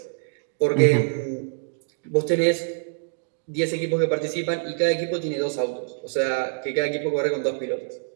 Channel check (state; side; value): silent; left; digital silence